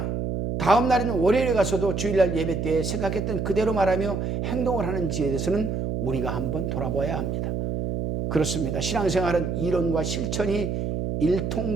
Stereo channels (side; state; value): right; noise; hum, 2 dB below the sound